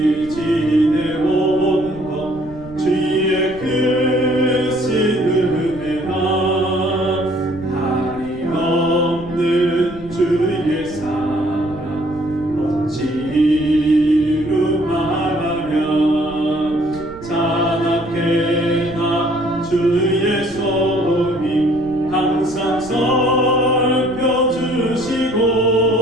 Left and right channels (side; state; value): right; noise; rumble, 17 dB below the sound